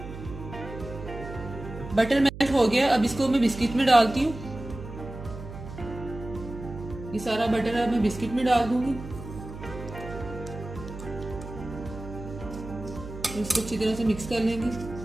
बटर मेल्ट हो गया। अब इसको मैं बिस्किट में डालती हूँ। ये सारा बटर अब मैं बिस्किट में डाल दूंगी। इसको अच्छी तरह से मिक्स कर लेंगे।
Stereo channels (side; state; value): right; noise; hum, 12 dB below the sound